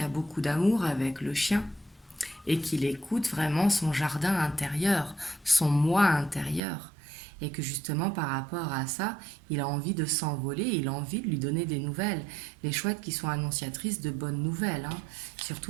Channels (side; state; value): left; drops out; at 6.6 s